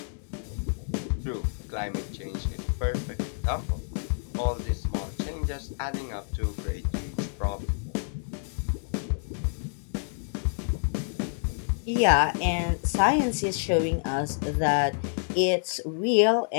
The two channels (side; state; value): right; silent; digital silence